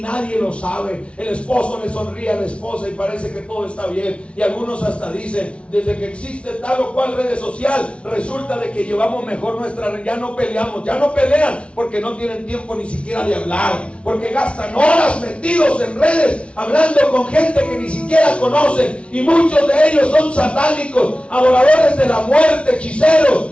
nadie lo sabe. El esposo le sonríe a la esposa y parece que todo está bien. Y algunos hasta dicen, desde que existe tal o cual red social, resulta de que llevamos mejor nuestra, ya no peleamos, ya no pelean porque no tienen tiempo ni siquiera de hablar, porque gastan horas metidos en redes hablando con gente que ni siquiera conocen, y muchos de ellos son satánicos, adoradores de la muerte, hechiceros,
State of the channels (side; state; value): right; late; 0.060 ms